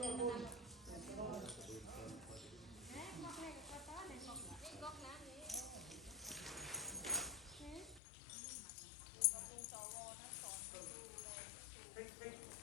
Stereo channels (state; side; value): drops out; right; at 8.0 s